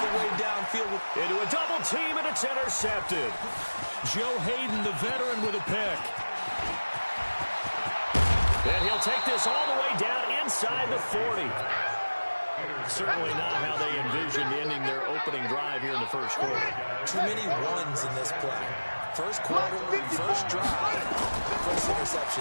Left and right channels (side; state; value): both; inverted; correlation -1.00